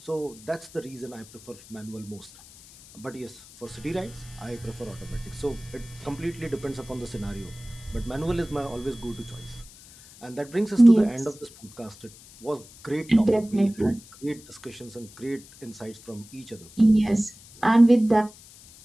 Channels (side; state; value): left; noise; hiss, 21 dB below the sound